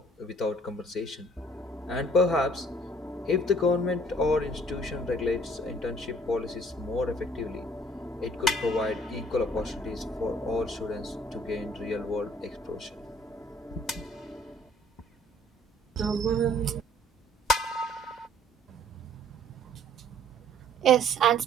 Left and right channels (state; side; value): normal; both; correlation 0.57